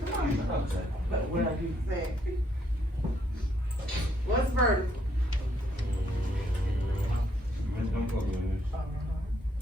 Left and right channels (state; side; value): normal; both; correlation 0.72